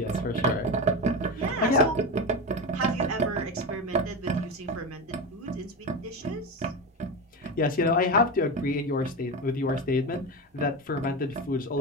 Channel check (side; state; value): both; normal; correlation 0.20